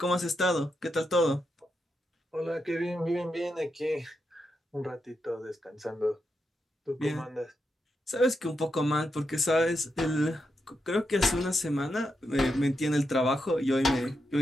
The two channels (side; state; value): both; normal; correlation 0.85